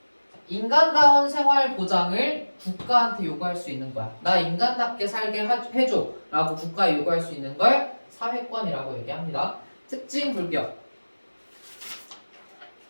인간다운 생활 보장을 국가한테 요구할 수 있는 거야. 나 인간답게 살게 해줘 라고 국가에 요구할 수 있는 걸 사회권이라고 얘기합니다. 특징 불격.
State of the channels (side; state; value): both; inverted; correlation -1.00